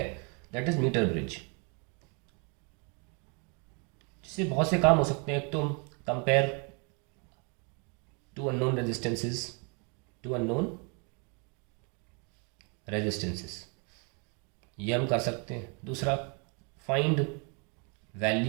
दैट इज मीटर ब्रिज, जिससे बहुत से काम हो सकते हैं। एक तो कंपेयर टू अननोन रेजिस्टेंसेस, ये हम कर सकते हैं। दूसरा, find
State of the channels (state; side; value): quieter; left; 35.5 dB